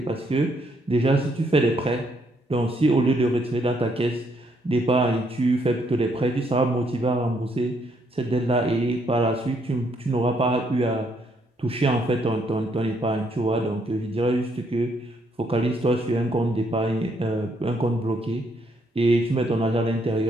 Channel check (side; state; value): both; normal; correlation 0.72